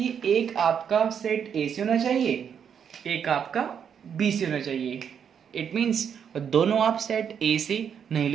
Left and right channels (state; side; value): quieter; left; 7.8 dB